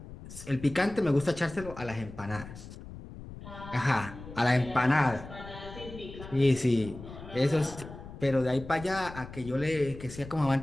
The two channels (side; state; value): left; noise; rumble, 14 dB below the sound